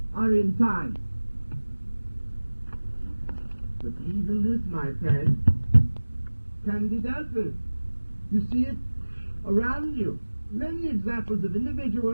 are in time. But even this, my friend, can be dealt with. You see it around you. Many examples of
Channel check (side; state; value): both; inverted; correlation -1.00